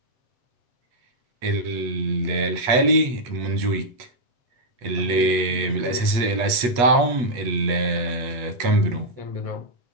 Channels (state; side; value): late; left; 8.3 ms